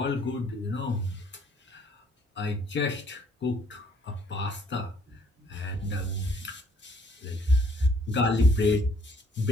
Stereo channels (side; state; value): both; normal; correlation 0.63